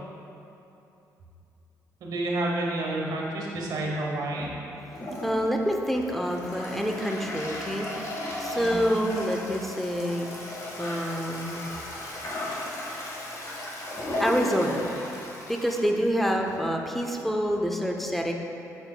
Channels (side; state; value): both; normal; correlation 0.82